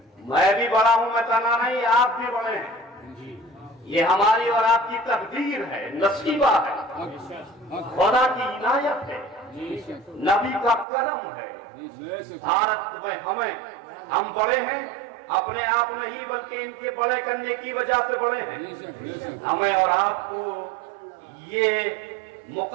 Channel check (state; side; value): drops out; left; at 10.9 s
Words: मैं भी बड़ा हूं, मैं तना नहीं, आप भी बड़े हैं। ये हमारी और आपकी तकदीर है, नसीबा है, खुदा की इनायत है, नबी का करम है। भारत में हम बड़े हैं, अपने आप नहीं बल्कि इनके बड़े करने की वजह से बड़े हैं। हमें और आपको ये